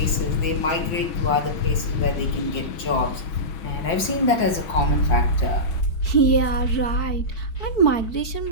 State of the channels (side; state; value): right; late; 5.8 ms